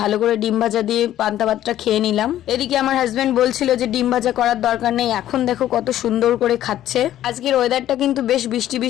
ভালো করে ডিম ভাজা দিয়ে পান্তা ভাতটা খেয়ে নিলাম। এদিকে আমার হাজবেন্ড বলছিল যে ডিম ভাজা করার দরকার নেই, এখন দেখো কত সুন্দর করে খাচ্ছে। আজকের ওয়েদারটা কিন্তু বেশ বৃষ্টি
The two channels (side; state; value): right; quieter; 12.5 dB